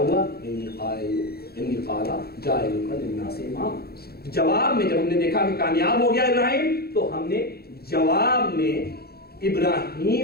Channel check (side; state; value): right; late; 0.46 ms